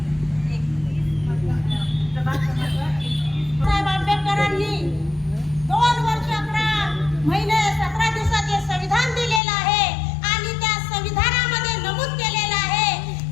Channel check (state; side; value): drops out; right; at 9.4 s